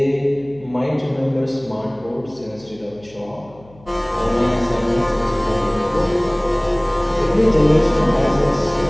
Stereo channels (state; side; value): noise; left; hum, 25 dB below the sound